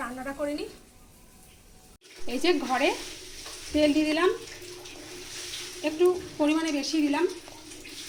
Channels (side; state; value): both; identical; correlation 1.00